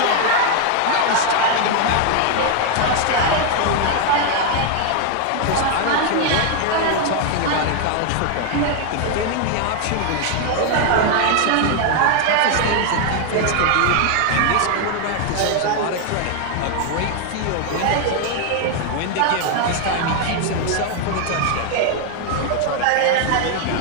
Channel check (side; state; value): both; different; correlation 0.01